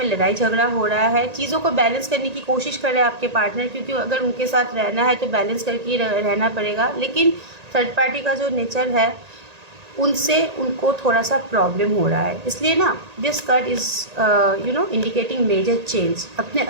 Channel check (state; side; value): late; left; 1.8 ms